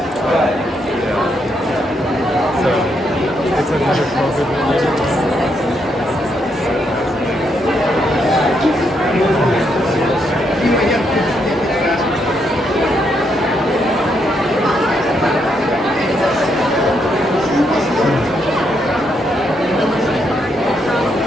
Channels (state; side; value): normal; both; correlation 0.77